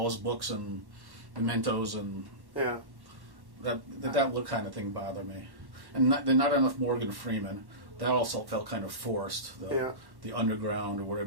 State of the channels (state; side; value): late; left; 1.1 ms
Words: his books and mementos and Yeah. that look kind of thing bothered me. And not enough Morgan Freeman. That also felt kind of forced. The underground, or